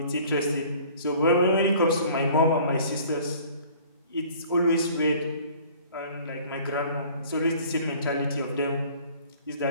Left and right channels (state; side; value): inverted; both; correlation -0.51